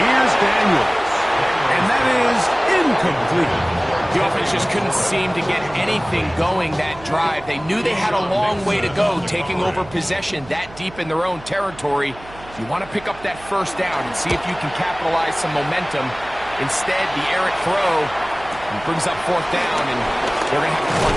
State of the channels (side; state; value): right; noise; hum, 19 dB below the sound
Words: Here's Daniels. And that is incomplete. The offense just couldn't seem to get anything going that drive. They knew they had a long way to go, taking over possession that deep in their own territory. You want to pick up that first down and see if you can capitalize some momentum. Instead, the errant throw brings up fourth down, and they're going to have to